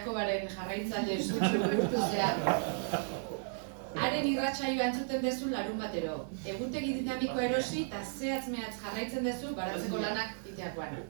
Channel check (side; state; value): left; silent; digital silence